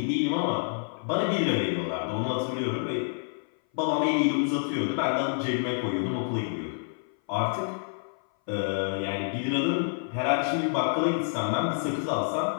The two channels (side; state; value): right; silent; 57 dB below the other